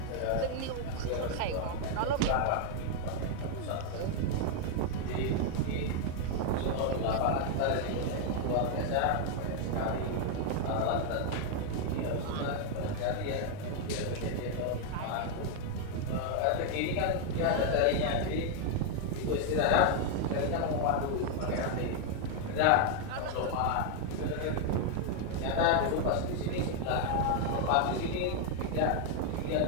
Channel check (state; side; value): different; both; correlation 0.00